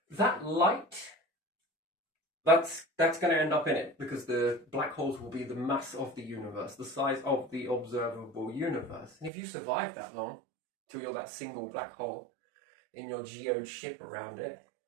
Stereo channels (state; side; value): drops out; left; at 9.3 s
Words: that light... That's going to end up in it, because the black holes will be the mass of the universe, the size of the observable universe. And if you survive that long, till you're that single black hole in your geode ship around it,